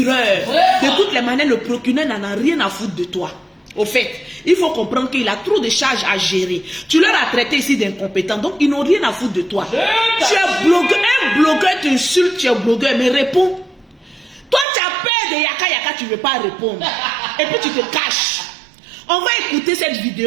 De toutes les manières, le procureur n'en a rien à foutre de toi. Au fait, il faut comprendre qu'il a trop de charges à gérer. Tu leur as traité ici d'incompétent, donc ils n'ont rien à foutre de toi. Tu es blogueur, un blogueur t'insulte, tu es blogueur, mais réponds. Toi, tu as peur de Yaka Yaka, tu ne veux pas répondre. Et puis tu te caches. On va écouter cette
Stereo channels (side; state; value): left; drops out; at 14.7 s